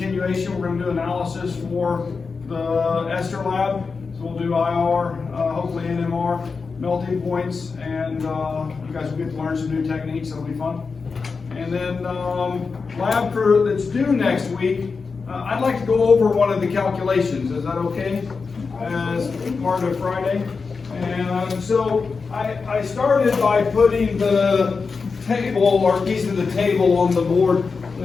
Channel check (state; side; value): quieter; right; 4.8 dB